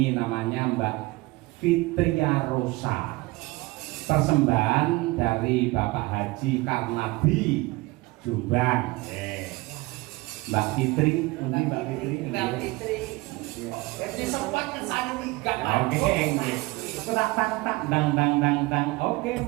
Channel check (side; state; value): left; quieter; 22.4 dB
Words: namanya Mbak Fitria Rosa. Persembahan dari Bapak Haji Karnabi Jombang. Mbak Fitri, Mbak Fitri. Mbak Fitri. Jadi sempat kesana migak. Oke, nggih. Tak dang. Oke,